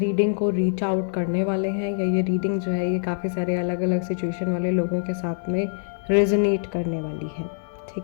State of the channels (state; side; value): silent; right; digital silence